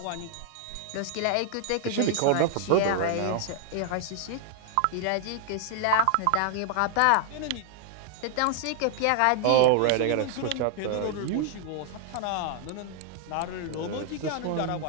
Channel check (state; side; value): different; both; correlation 0.00